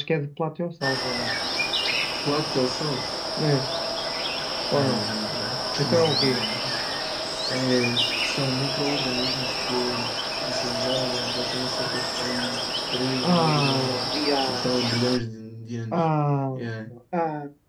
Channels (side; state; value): both; identical; correlation 1.00